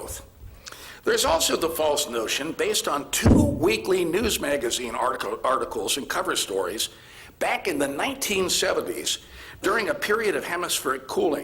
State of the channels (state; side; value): identical; both; correlation 1.00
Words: There's also the false notion, based on 2 weekly news magazine articles and cover stories back in the 1970s during a period of hemispheric